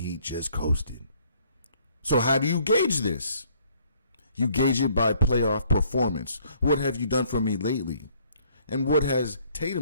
just coasted. So how do you gauge this? You gauge it by playoff performance. What have you done for me lately? And what has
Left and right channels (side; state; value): both; inverted; correlation -0.64